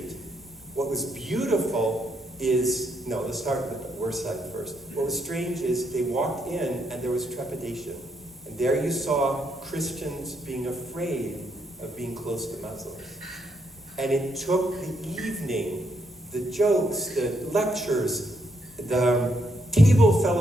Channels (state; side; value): normal; both; correlation 0.76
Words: What was beautiful is, let's start with the worst side first. What was strange is they walked in and there was trepidation. And there you saw Christians being afraid of being close to Muslims. And it took the evening, the jokes, the lectures, the table